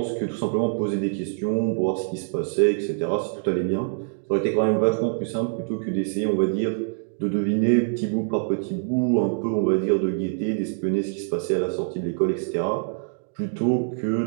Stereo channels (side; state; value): left; silent; digital silence